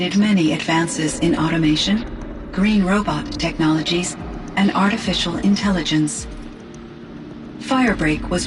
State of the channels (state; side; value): identical; both; correlation 1.00